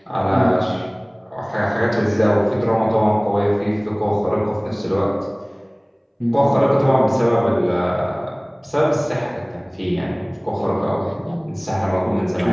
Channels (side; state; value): both; identical; correlation 1.00